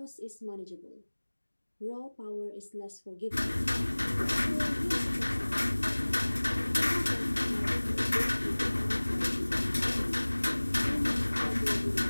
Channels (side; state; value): both; inverted; correlation -1.00